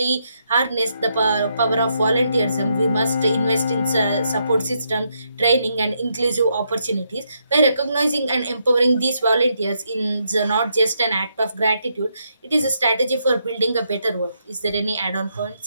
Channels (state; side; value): inverted; both; correlation -0.78